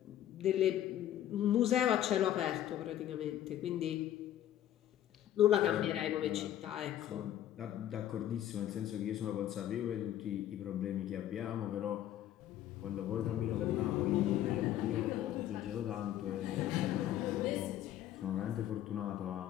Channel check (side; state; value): right; quieter; 11.9 dB